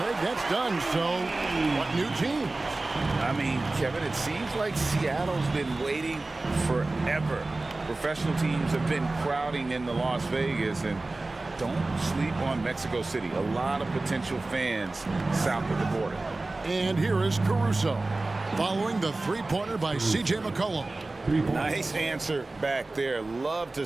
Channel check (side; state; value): left; quieter; 3.1 dB